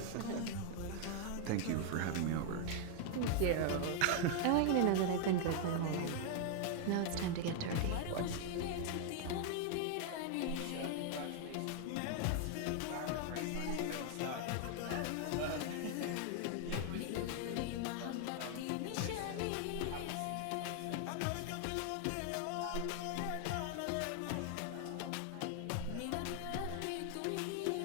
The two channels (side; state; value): both; different; correlation 0.00